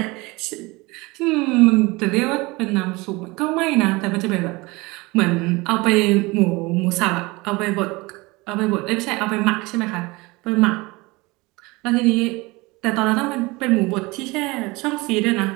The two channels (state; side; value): quieter; left; 23.6 dB